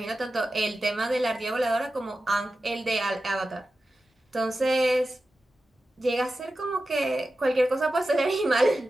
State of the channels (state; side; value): normal; both; correlation 0.93